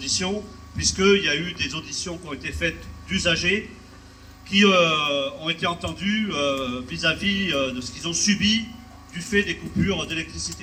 puisqu'il y a eu des auditions qui ont été faites d'usagers qui ont été entendus vis-à-vis de ce qu'ils ont subi du fait des coupures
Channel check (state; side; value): identical; both; correlation 1.00